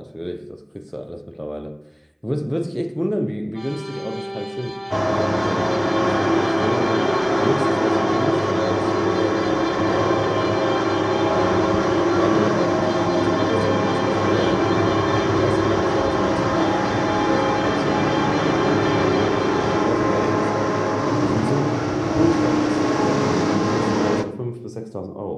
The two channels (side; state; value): both; identical; correlation 1.00